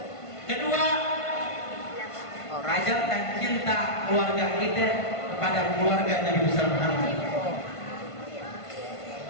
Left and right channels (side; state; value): right; late; 1.5 ms